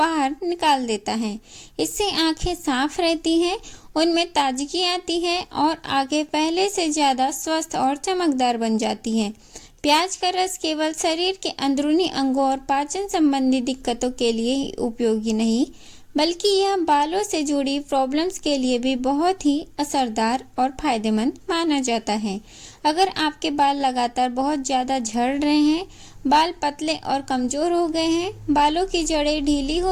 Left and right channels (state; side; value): identical; both; correlation 1.00